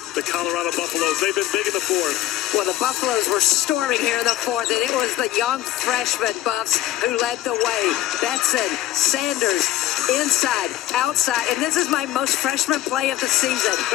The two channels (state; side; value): quieter; right; 14.3 dB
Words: the Colorado Buffaloes. They've been big in the fourth. Well, the Buffaloes were storming here in the fourth, and it was the young freshman Buffs who led the way. Betson, Sanders, inside, outside, and this is my most freshman play of the season.